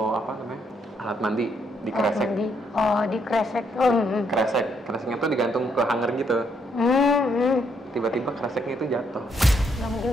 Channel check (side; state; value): both; normal; correlation 0.74